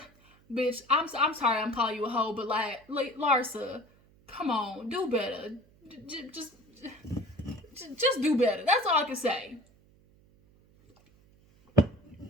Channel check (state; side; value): noise; right; hum, 30 dB below the sound